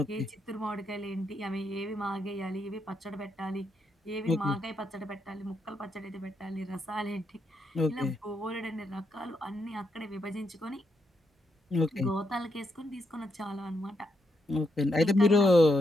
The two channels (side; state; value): both; normal; correlation 0.80